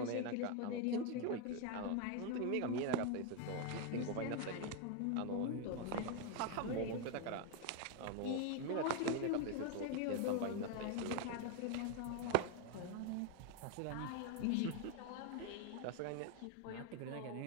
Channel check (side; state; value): both; different; correlation 0.01